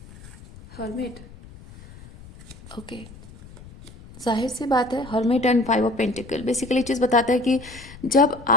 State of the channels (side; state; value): left; noise; rumble, 19 dB below the sound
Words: हर्मिट, ओके, जाहिर सी बात है, hermit and 5 of pentacle basically चीज़ बताता है कि जब